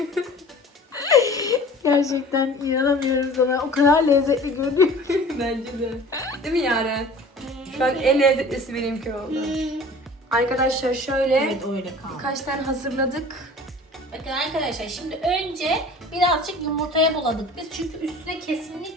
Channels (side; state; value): both; normal; correlation 0.44